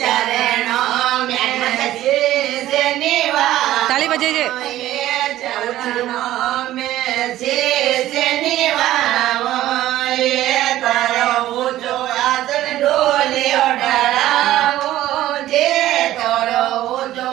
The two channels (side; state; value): left; quieter; 14.2 dB